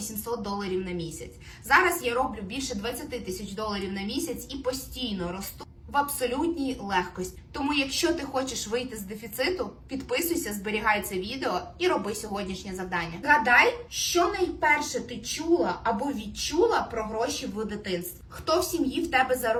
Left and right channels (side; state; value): both; identical; correlation 1.00